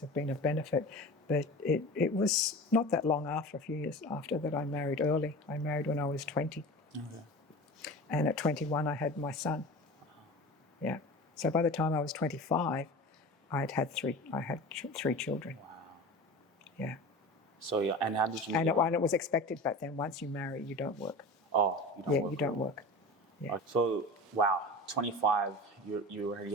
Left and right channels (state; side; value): normal; both; correlation 0.34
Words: have been of benefit. But it was not that long after, a few years after, that I married early. I married when I was 20. Okay. And at 21, I had my son. Yeah. So by the time I was 25, I had three children. Wow. Yeah. So and how did you? And it was expected back then. Once you marry, you don't work. Oh, you don't work. You don't work. Yeah. So wow, 25, you already